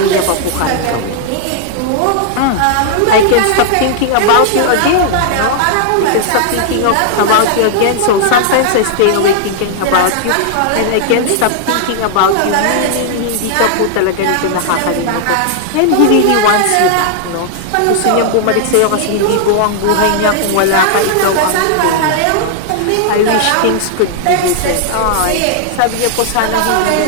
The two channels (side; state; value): both; different; correlation -0.01